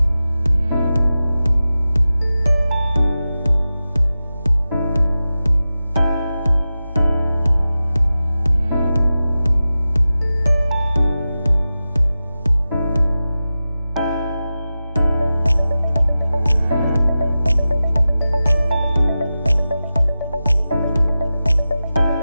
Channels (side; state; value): both; inverted; correlation -0.94